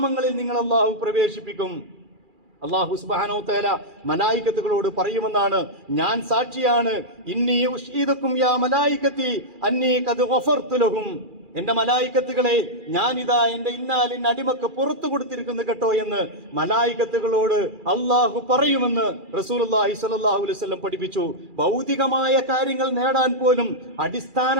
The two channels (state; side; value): late; left; 2.4 ms